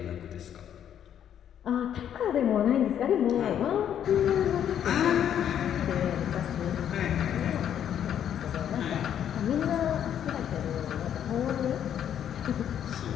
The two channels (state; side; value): quieter; right; 9.6 dB